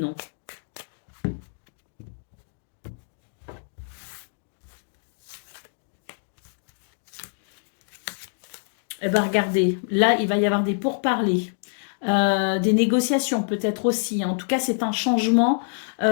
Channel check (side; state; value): right; silent; digital silence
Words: Eh bien, regardez, là, il va y avoir des pourparlers, des négociations peut-être aussi, hein. En tout cas, c'est un changement